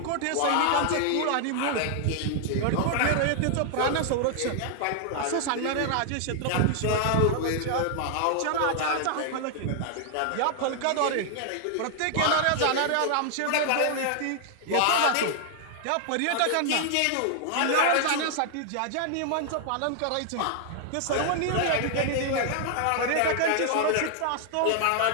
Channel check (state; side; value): different; both; correlation 0.00